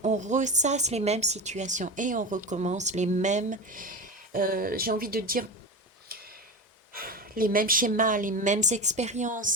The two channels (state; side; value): normal; both; correlation 0.24